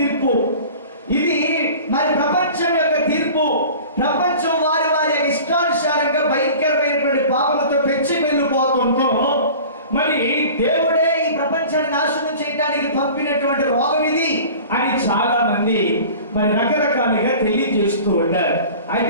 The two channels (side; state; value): both; inverted; correlation -0.41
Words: ఇది మరి ప్రపంచం యొక్క తీర్పు. ప్రపంచం వారి యొక్క ఇష్టానుసారంగా భయంకరమైనటువంటి పాపలతో పెంచి వెళ్ళిపోతుంటో మరి దేవుడే ఈ ప్రపంచాన్ని నాశనం చేయడానికి పంపినటువంటి రోగం ఇది అని చాలా మంది మరి రకరకాలుగా తెలియజేస్తూ ఉన్నారు.